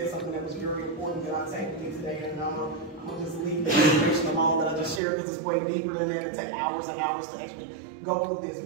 something that was very important that I take with me today, and I'm gonna just leave the information alone that I just shared because it's way deeper than that. It take hours and hours to actually go through this.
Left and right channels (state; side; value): drops out; left; at 5.0 s